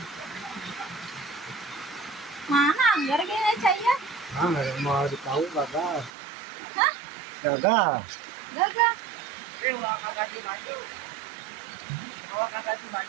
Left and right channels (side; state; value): left; drops out; at 6.1 s